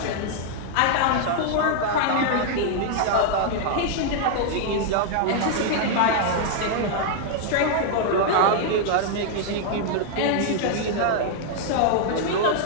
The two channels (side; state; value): both; different; correlation -0.01